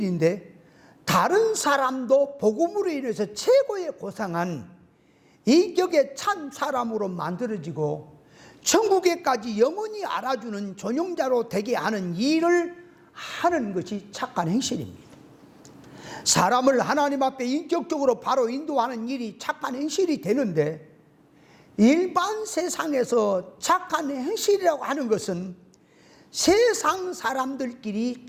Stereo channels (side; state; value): both; identical; correlation 1.00